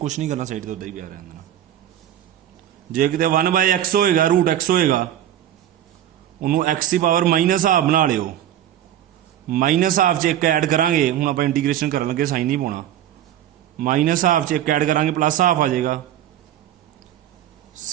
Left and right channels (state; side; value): quieter; left; 11.6 dB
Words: ਨਹੀਂ ਕਰਨਾ, ਸਾਈਡ ਤੇ ਉੱਦਾਂ ਹੀ ਪਿਆ ਰਹਿਣ ਦੇਣਾ। ਜੇ ਕਿਤੇ 1/x ਹੋਏਗਾ, √x ਹੋਏਗਾ, ਉਹਨੂੰ x ਦੀ ਪਾਵਰ -ਹਾਫ ਬਣਾ ਲਿਓ, -ਹਾਫ 'ਚ ਇੱਕ ਐਡ ਕਰਾਂਗੇ, ਹੁਣ ਆਪਾਂ ਇੰਟੀਗ੍ਰੇਸ਼ਨ ਕਰਨ ਲੱਗੇ ਸਾਈਨ ਨਹੀਂ ਪਾਉਣਾ, -ਹਾਫ 'ਚ ਇੱਕ ਐਡ ਕਰਾਂਗੇ +ਹਾਫ ਆ ਜਾਏਗਾ,